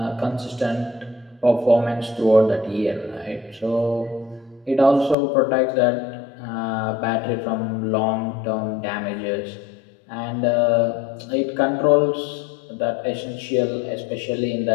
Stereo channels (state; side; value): drops out; right; at 5.2 s